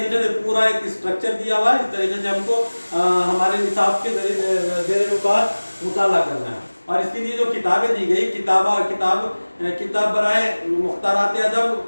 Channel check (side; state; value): both; inverted; correlation -1.00